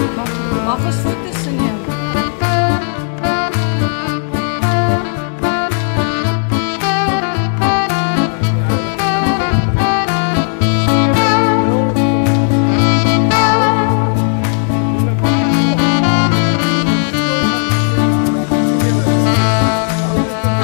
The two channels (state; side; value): silent; right; 55 dB below the other